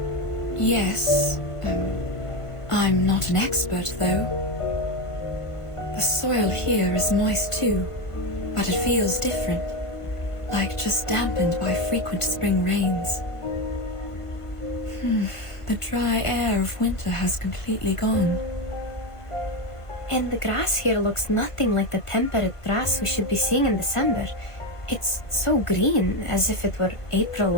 Yes. I'm not an expert, though. The soil here is moist too, but it feels different, like just dampened by frequent spring rains. The dry air of winter has completely gone. And the grass here looks nothing like the temperate grass we should be seeing in December. It's so green, as if it were April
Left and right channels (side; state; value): right; late; 1.5 ms